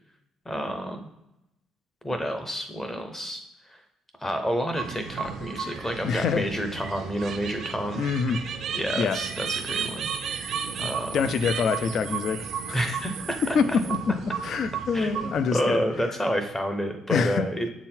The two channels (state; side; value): normal; both; correlation 0.75